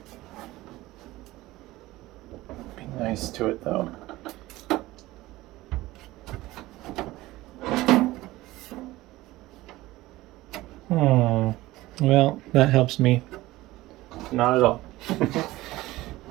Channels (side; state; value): left; quieter; 18.0 dB